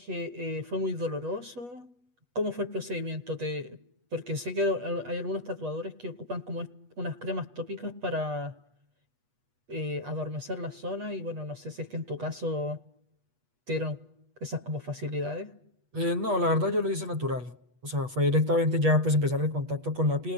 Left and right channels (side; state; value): left; late; 8.2 ms